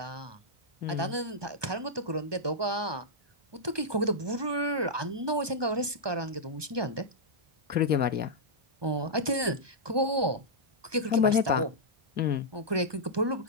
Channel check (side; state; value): left; late; 1.2 ms